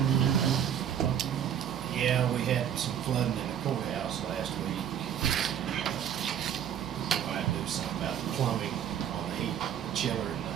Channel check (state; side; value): quieter; left; 9.4 dB